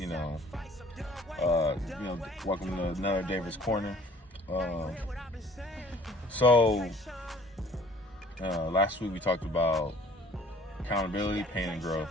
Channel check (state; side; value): normal; both; correlation 0.53